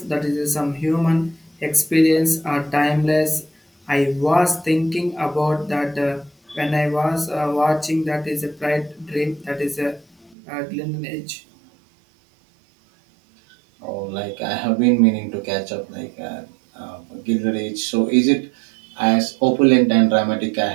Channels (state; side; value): drops out; left; at 10.4 s